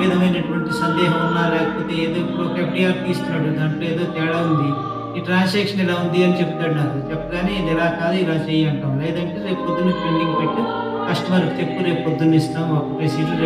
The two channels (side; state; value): both; identical; correlation 1.00